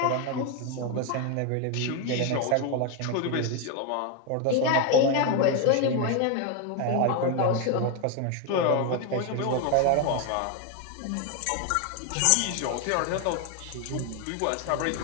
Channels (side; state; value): both; different; correlation 0.01